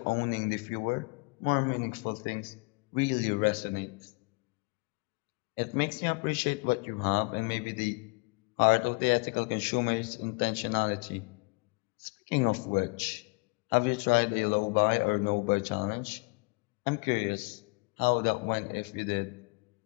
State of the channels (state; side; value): quieter; right; 31.2 dB